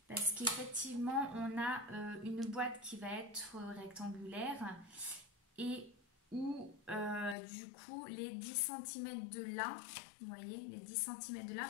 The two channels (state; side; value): drops out; right; at 7.4 s